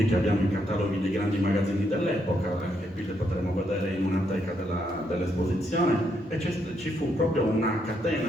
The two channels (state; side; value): normal; both; correlation 0.77